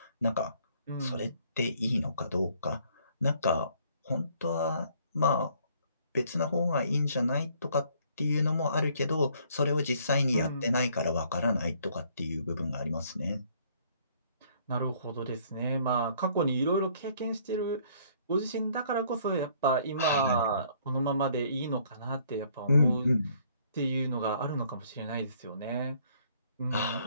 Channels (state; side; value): inverted; both; correlation -0.62